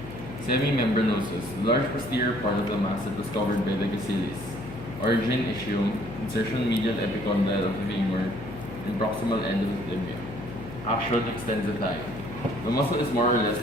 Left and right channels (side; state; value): left; noise; hum, 12 dB below the sound